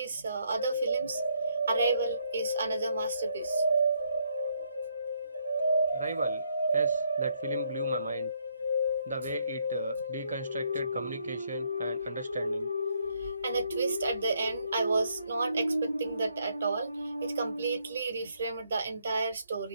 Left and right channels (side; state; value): both; inverted; correlation -0.72